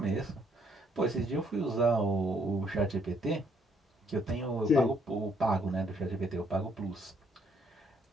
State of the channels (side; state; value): both; normal; correlation 0.68